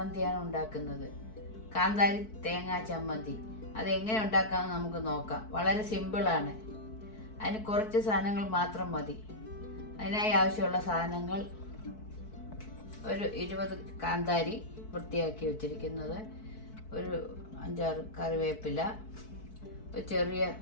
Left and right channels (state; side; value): late; right; 4.6 ms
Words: ഉണ്ടാക്കുന്നത്. കാന്താരി തേങ്ങാ ചമ്മന്തി. അത് എങ്ങനെ ഉണ്ടാക്കാമെന്ന് നമുക്ക് നോക്കാം. വളരെ സിമ്പിളാണ്. അതിന് കുറച്ച് സാധനങ്ങൾ മാത്രം മതി. അതിനായി ആവശ്യമുള്ള സാധനങ്ങൾ: ഒരു 20 കാന്താരി വൃത്തിയാക്കി വെച്ചിരിക്കുന്നത്, ഒരു 5-6 കറിവേപ്പില, ഒരു ചെറിയ